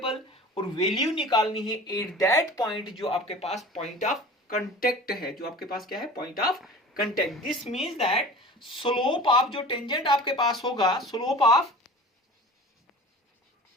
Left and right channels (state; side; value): normal; both; correlation 0.40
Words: और वैल्यू निकालनी है एट दैट पॉइंट जो आपके पास पॉइंट ऑफ कांटेक्ट है, जो आपके पास क्या है, point of contact. This means that slope of जो टेंजेंट आपके पास होगा, slope